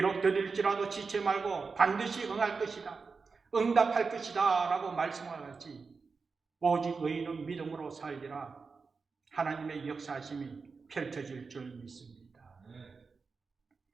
더딜지라도 지체 말고 반드시 응할 것이다, 응답할 것이다 라고 말씀하였지, 오직 의인은 믿음으로 살리라 하나님의 역사하심이 펼쳐질 줄 믿습니다.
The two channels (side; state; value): left; quieter; 4.7 dB